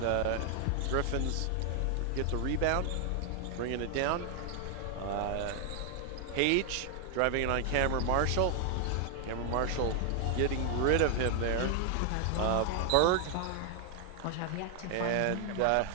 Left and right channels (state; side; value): different; both; correlation 0.00